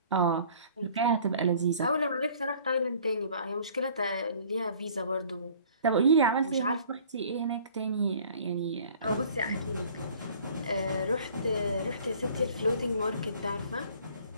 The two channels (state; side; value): inverted; both; correlation -0.52